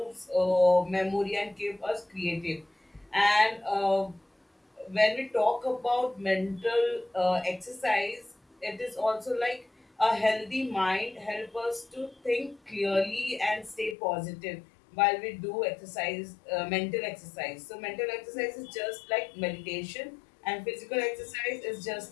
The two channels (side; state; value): right; drops out; at 14.0 s